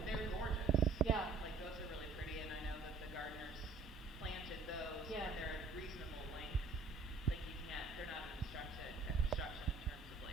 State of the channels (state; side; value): quieter; left; 4.0 dB